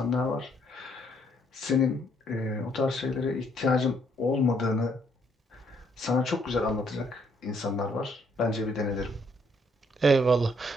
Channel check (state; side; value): normal; both; correlation 0.68